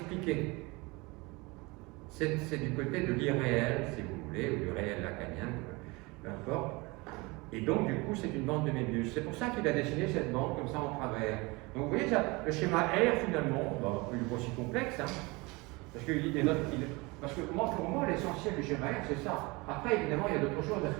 C'est du côté de l'irréel, si vous voulez, ou du réel lacanien, peu importe. Et donc, du coup, c'est une bande de Mébius. C'est pour ça qu'il a dessiné cette bande comme ça en travers. Donc, vous voyez, ça, le schéma R, finalement, il n'est pas aussi complexe, hein, parce que pour moi, l'essentiel du schéma R, c'est ça. Après, évidemment, il y a d'autres choses, parce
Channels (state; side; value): quieter; left; 25.1 dB